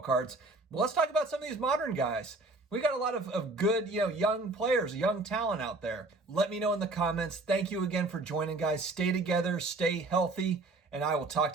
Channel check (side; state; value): left; quieter; 3.1 dB